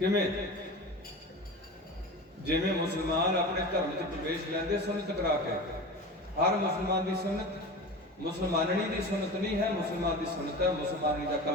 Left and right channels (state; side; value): normal; both; correlation 0.31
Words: ਜਿਵੇਂ ਮੁਸਲਮਾਨ ਆਪਣੇ ਧਰਮ 'ਚ ਪ੍ਰਵੇਸ਼ ਲੈਂਦੇ ਸੁਨਨਤ ਕਰਾ ਕੇ, ਹਰ ਮੁਸਲਮਾਨ ਦੀ ਸੁਨਨਤ ਮੁਸਲਮਾਨਣੀ ਦੀ ਸੁਨਨਤ ਨਹੀਂ ਹੈ, ਮੁਸਲਮਾਨ ਦੀ ਸੁਨਨਤ ਹੈ ਮੁਸਲਮਾਨੀ ਦਾ